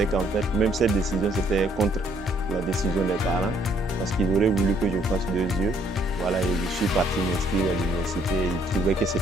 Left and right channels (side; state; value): both; normal; correlation 0.66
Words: qu'en fait, même cette décision, c'était contre la décision des parents, parce qu'ils auraient voulu que je fasse 2 yeux. Voilà, et je suis parti m'inscrire à l'université. Ils trouvaient que